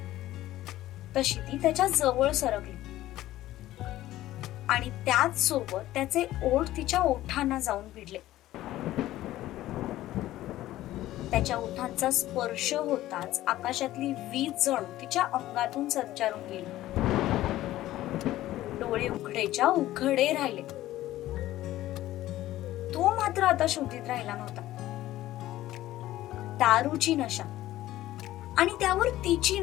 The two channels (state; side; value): quieter; right; 15.0 dB